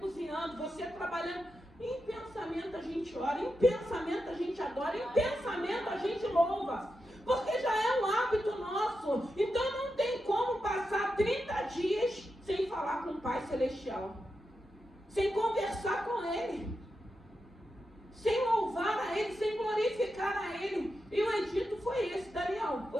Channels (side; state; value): both; normal; correlation 0.88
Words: você trabalhando. Em pensamento a gente ora, em pensamento a gente adora, em pensamento a gente louva. Porque já é um hábito nosso. Então não tem como passar 30 dias celestial, sem conversar com Ele, sem louvar a Ele, sem glorificar a Ele. E o edito foi esse: Daniel,